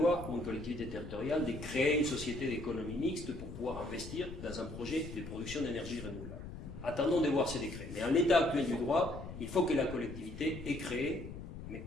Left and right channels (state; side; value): noise; left; rumble, 11 dB below the sound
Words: pour une collectivité territoriale de créer une société d'économie mixte pour pouvoir investir dans un projet de production d'énergie renouvelable. Attendons de voir ces décrets. Mais en l'état actuel du droit, il faut que la collectivité ait créé, mais